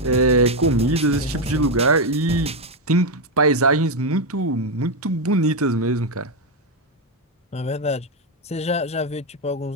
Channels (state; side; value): normal; both; correlation 0.05